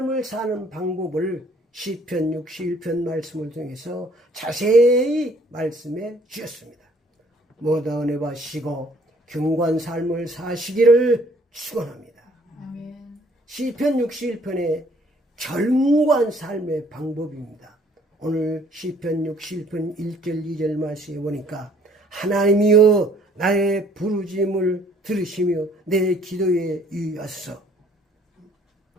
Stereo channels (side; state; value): both; normal; correlation 0.60